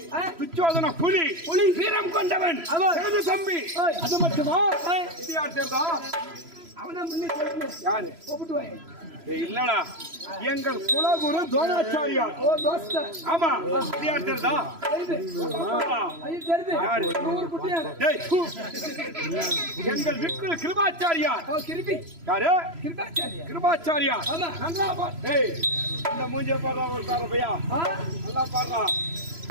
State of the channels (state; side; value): late; left; 3.0 ms